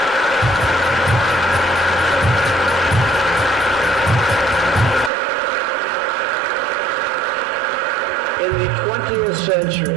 In the 20th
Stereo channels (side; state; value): left; drops out; at 5.1 s